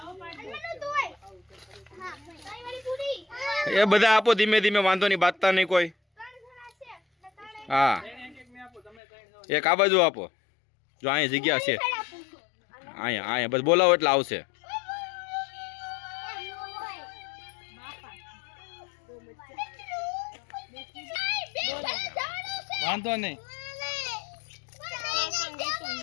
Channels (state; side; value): drops out; right; at 9.0 s